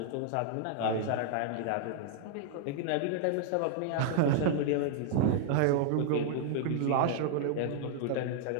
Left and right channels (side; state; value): both; different; correlation -0.01